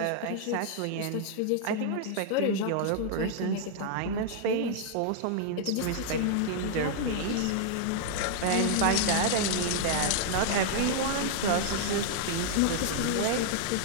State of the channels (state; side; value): different; both; correlation -0.01